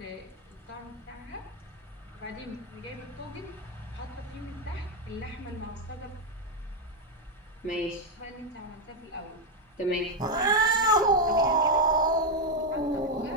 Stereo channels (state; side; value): normal; both; correlation 0.04